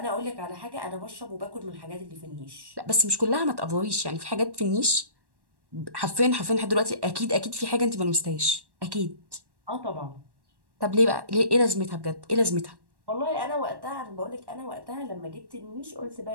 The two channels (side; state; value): left; late; 1.1 ms